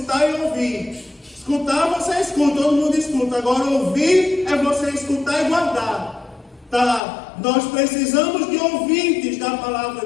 e ouvir. Escutar, você escuta, todo mundo escuta. Agora, ouvir é você escutar e guardar. Tá? Nós precisamos de ouvintes da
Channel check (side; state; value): right; drops out; at 7.0 s